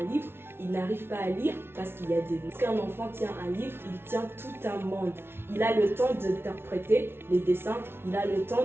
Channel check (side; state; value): left; late; 0.12 ms